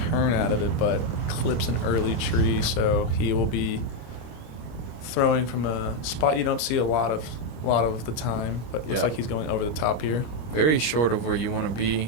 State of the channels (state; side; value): late; right; 25 ms